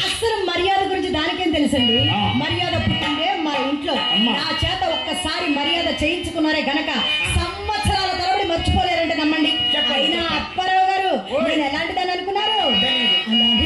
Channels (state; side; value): identical; both; correlation 1.00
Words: అసలు మర్యాద గురించి దానికేం తెలుసండి? మర్యాద పుట్టిందే మా ఇంట్లో. నా చేత ఒక్కసారి మర్యాద చేయించుకున్నారే గనక సంవత్సరాల తరబడి మర్చిపోలేరంటే నమ్మండి. అయినా అప్పారావు గారు నేను ఎలాంటి దాన్ని అనుకున్నారు?